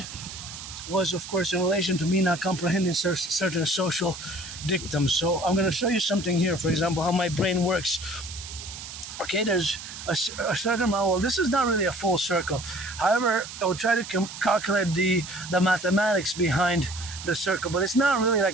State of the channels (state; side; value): noise; right; hiss, 11 dB below the sound